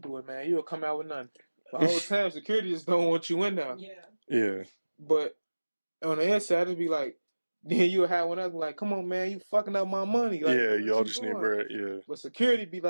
do it, man. You'll come out with nothing. The whole time, security just don't want you in there. Yeah. But on the inside, it'd be like, then you'll have one else like, come on, man, you fucking up my money. Like, Yeah, what y'all you just need doing? bread. Yeah. But security be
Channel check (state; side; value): inverted; both; correlation -1.00